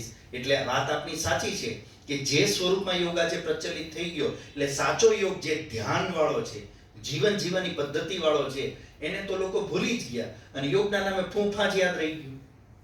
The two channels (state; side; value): identical; both; correlation 1.00